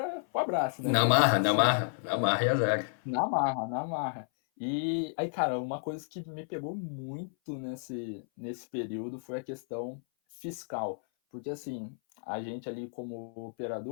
o abraço, né? Na Fazer marra, tudo na certo. marra, na marra e azar. Na marra, na marra. E aí, cara, uma coisa que me pegou muito nesse período foi a questão fiscal. Porque, assim, a gente ali como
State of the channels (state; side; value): silent; right; 57 dB below the other